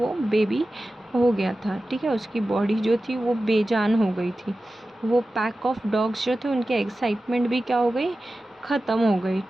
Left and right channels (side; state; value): both; normal; correlation 0.94